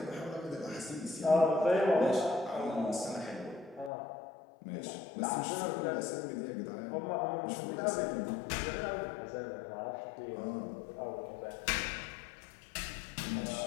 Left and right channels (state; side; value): drops out; right; at 3.9 s